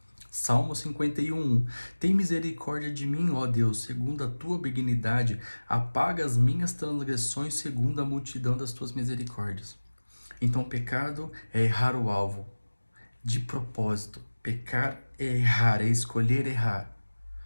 Salmo 51:1. Tem misericórdia de mim, ó Deus, segundo a tua benignidade, apaga as minhas transgressões segundo a multidão das tuas misericórdias. Então, pecado é errar o alvo, de propósito. Pecar é errar, é escolher errar.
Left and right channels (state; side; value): inverted; both; correlation -1.00